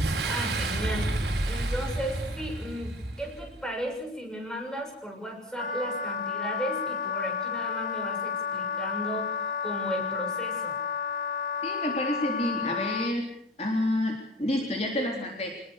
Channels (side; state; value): both; normal; correlation 0.33